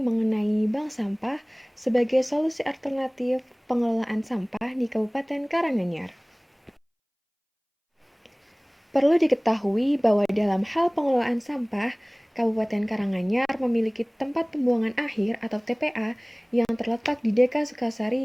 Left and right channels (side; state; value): both; identical; correlation 1.00